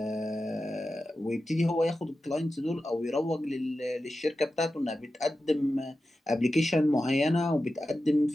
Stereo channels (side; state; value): both; normal; correlation 0.92